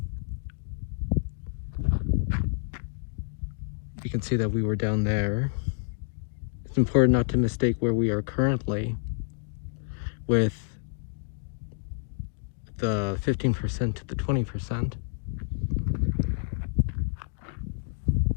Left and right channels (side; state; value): right; silent; digital silence